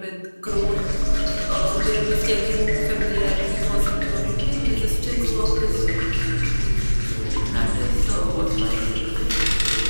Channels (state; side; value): inverted; both; correlation -1.00